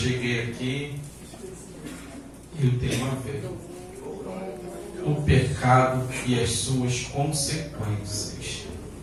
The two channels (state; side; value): identical; both; correlation 1.00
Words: aqui e o tema veio: o pecado e as suas consequências.